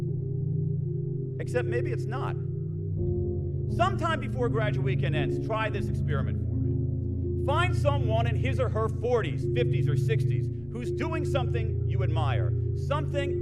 Except maybe it's not. Sometime before graduate weekend ends, try this experiment for me. Find someone in his or her 40s, 50s, or 60s who's doing something you admire, something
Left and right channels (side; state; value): left; noise; rumble, 23 dB below the sound